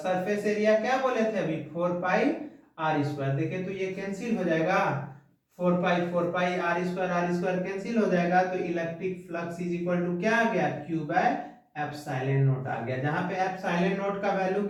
एरिया क्या बोले थे अभी, 4 पाई आर स्क्वायर, देखे तो ये कैंसिल हो जाएगा, 4 पाई आर स्क्वायर कैंसिल हो जाएगा, तो electric flux is equal to क्या आ गया, Q बाय एप्सिलॉन नॉट आ गया, जहां पे एप्सिलॉन नॉट का वैल्यू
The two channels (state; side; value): identical; both; correlation 1.00